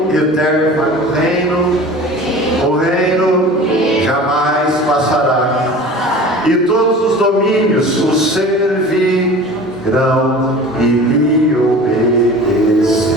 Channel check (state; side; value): normal; both; correlation 0.39